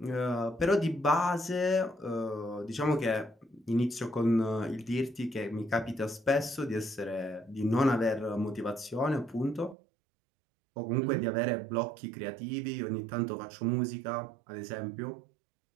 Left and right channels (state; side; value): drops out; left; at 9.8 s